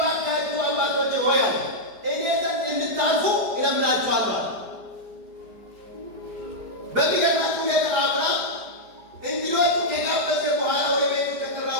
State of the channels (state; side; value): late; left; 4.9 ms